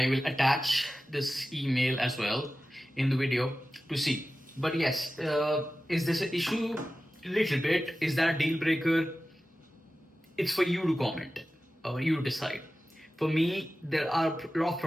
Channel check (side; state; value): both; normal; correlation 0.95